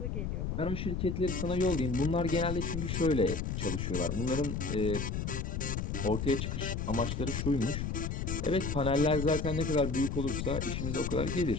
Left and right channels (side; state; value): left; noise; rumble, 2 dB below the sound